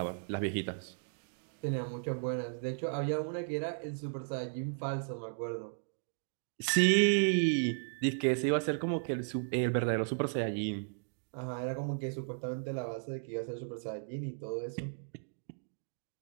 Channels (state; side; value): silent; left; digital silence